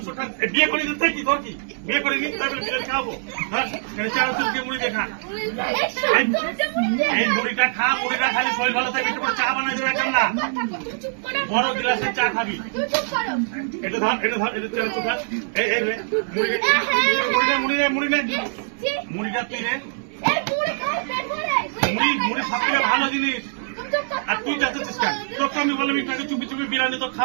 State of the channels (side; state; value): left; silent; digital silence